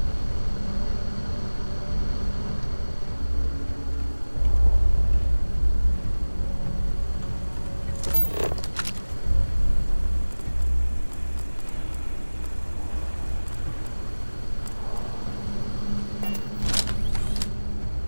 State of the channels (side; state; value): both; inverted; correlation -1.00